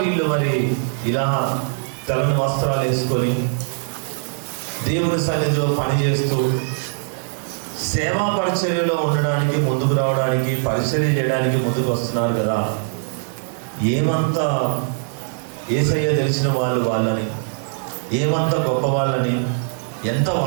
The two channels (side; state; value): left; silent; digital silence